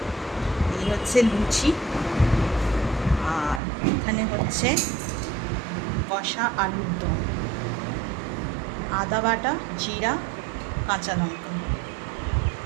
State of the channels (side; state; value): left; drops out; at 3.6 s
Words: এই হচ্ছে লুচি। আর এখানে হচ্ছে কষা আলুর দম, আদা বাটা, জিরা, কাঁচা লঙ্কা,